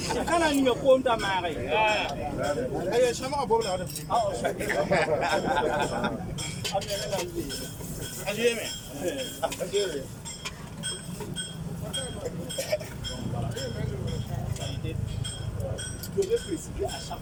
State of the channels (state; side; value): identical; both; correlation 1.00